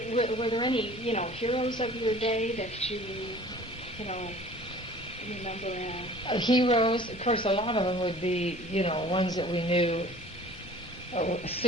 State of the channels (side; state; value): both; normal; correlation 0.47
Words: there any, heroes of your day that you you know, remember? Heroes, of course, a lot of them would be, you know, ones that we knew. As